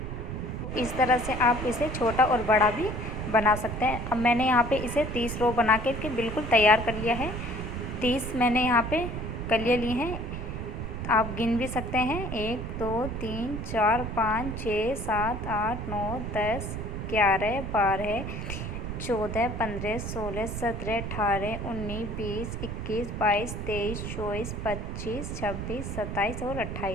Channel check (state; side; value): noise; right; rumble, 5 dB below the sound